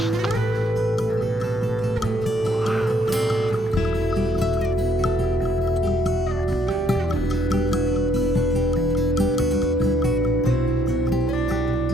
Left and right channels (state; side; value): normal; both; correlation 0.69